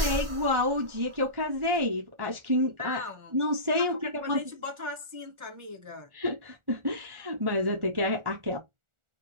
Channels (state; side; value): late; left; 1.4 ms